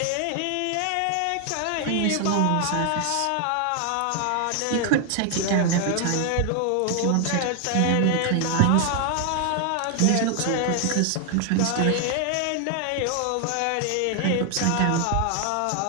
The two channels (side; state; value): both; different; correlation 0.00